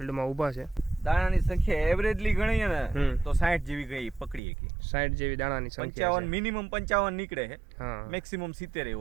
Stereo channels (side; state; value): left; drops out; at 4.4 s